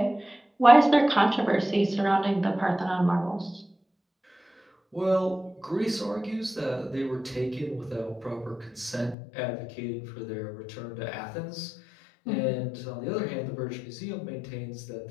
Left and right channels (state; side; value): drops out; right; at 9.2 s